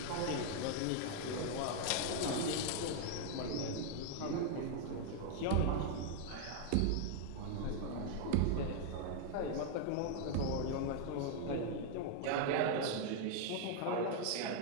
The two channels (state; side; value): different; both; correlation 0.00